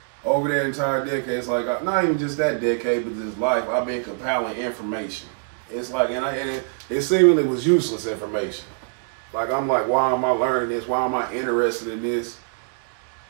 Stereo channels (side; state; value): left; silent; digital silence